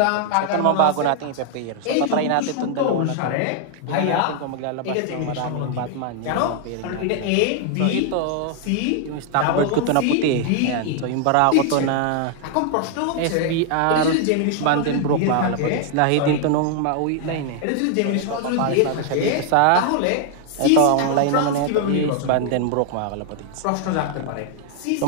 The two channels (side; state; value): both; different; correlation 0.00